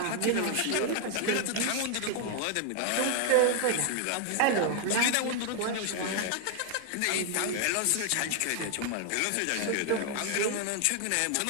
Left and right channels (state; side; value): different; both; correlation 0.00